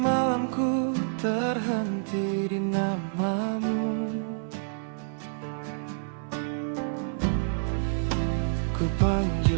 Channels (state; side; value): silent; left; 57 dB below the other